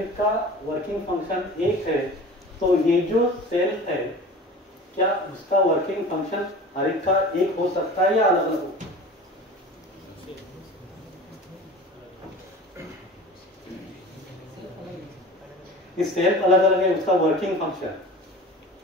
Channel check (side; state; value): both; normal; correlation 0.38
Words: का वर्किंग फंक्शन एक है तो ये जो सेल है, क्या उसका वर्किंग फंक्शन हर एक का एक हो सकता है या अलग अलग हो? इस सेल अलग अलग है, उसका वर्किंग फंक्शन